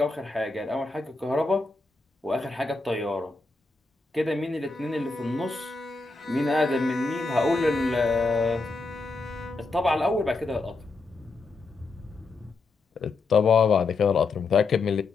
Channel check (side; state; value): right; quieter; 3.7 dB